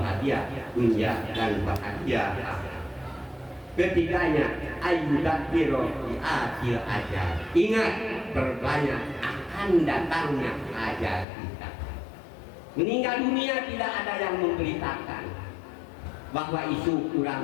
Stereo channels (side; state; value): right; drops out; at 11.2 s